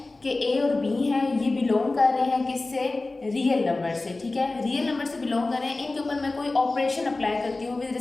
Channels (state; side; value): quieter; right; 3.2 dB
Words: कि ए और बी है, ये बिलोंग कर रहे हैं किससे, रियल नंबर से. ठीक है, रियल नंबर से बिलोंग कर रहे हैं. इनके ऊपर मैं कोई ऑपरेशन अप्लाई करती हूँ विद